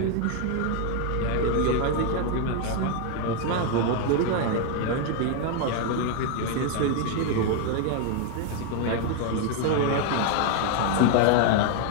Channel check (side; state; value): both; different; correlation 0.00